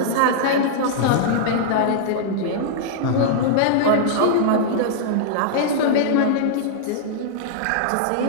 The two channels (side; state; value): both; different; correlation -0.02